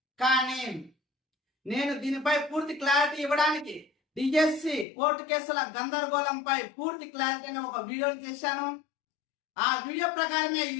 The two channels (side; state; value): right; drops out; at 4.9 s